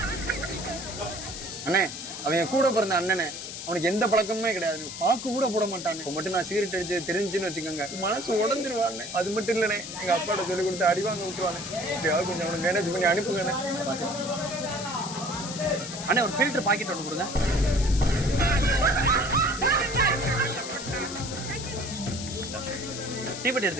அண்ணே அவன் கூட பிறந்த அண்ணனே, அவனுக்கு எந்த பழக்கமுமே கிடையாது, பாக்கு கூட போட மாட்டானே. இப்போ மட்டும் நான் சிகரெட் அடிச்சு தெரிஞ்சுன்னு வச்சுக்கோங்க, மனசு உடஞ்சிருவானே. அது மட்டும் இல்லைண்ணே, எங்க அப்பாட்ட சொல்லி கொடுத்து அடி வாங்க விட்டுருவானே. எப்படியாவது கொஞ்சம் அவனை மேனேஜ் பண்ணி அனுப்புங்கண்ணே. அண்ணே ஒரு ஃபில்டர் பாக்கெட் ஒன்று கொடுங்க. டீப்பட்டி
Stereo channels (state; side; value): noise; left; hiss, 8 dB below the sound